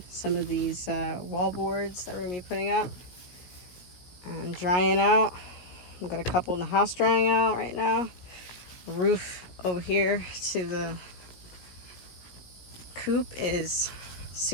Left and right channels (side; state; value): right; late; 17 ms